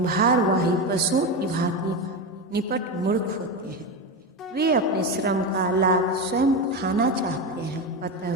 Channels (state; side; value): normal; both; correlation 0.17